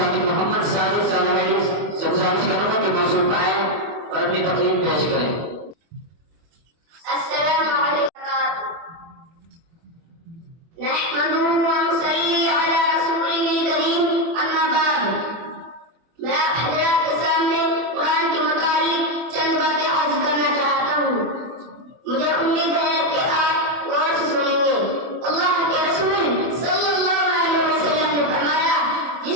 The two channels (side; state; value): left; late; 24 ms